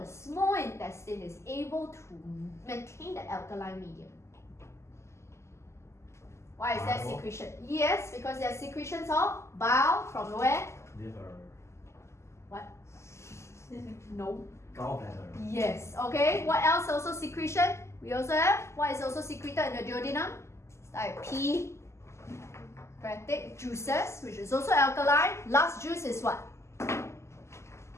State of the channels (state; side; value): late; right; 0.13 ms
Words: small intestine is able to maintain the alkaline medium? Why is that Bile. secretion? Yes, because there are secretions of bile from where? Liver. What? No. Gallbladder. Yes. Okay. What else also secretion? We also have what is also secreted in the duodenum? It's like pancreatic juices, which is also alkaline. Last juice is what?